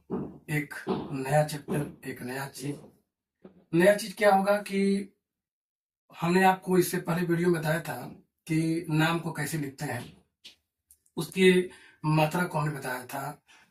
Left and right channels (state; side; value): identical; both; correlation 1.00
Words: एक नया चैप्टर, एक नया चीज। नया चीज क्या होगा कि हमने आपको इससे पहले वीडियो में बताया था कि नाम को कैसे लिखते हैं, उसकी मात्रा को हमने बताया था।